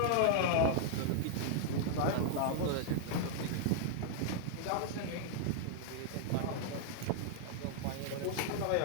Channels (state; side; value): different; both; correlation 0.00